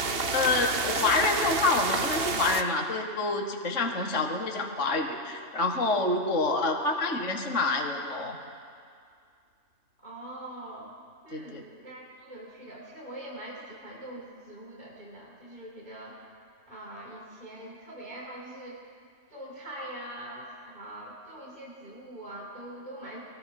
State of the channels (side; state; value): right; late; 2.8 ms